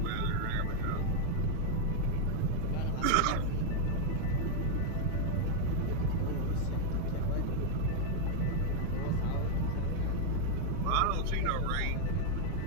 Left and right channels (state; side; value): different; both; correlation 0.00